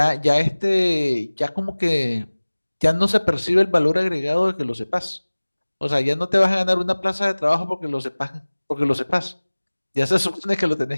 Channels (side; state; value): both; inverted; correlation -1.00